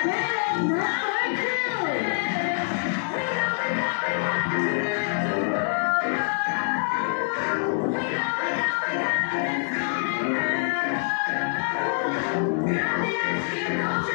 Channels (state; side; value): silent; right; digital silence